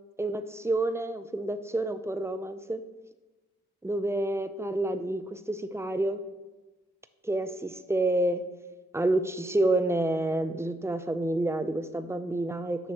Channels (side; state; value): both; normal; correlation 0.79